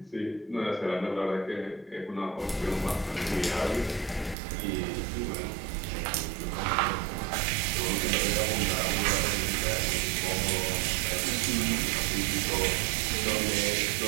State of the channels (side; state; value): left; drops out; at 4.4 s